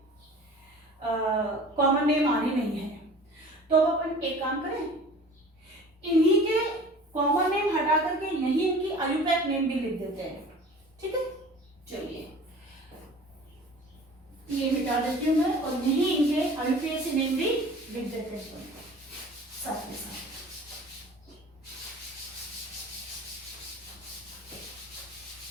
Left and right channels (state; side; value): normal; both; correlation 0.44